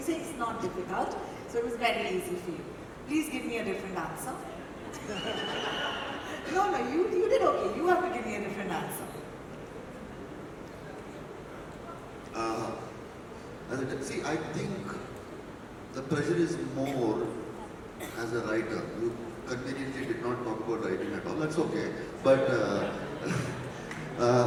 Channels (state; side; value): identical; both; correlation 1.00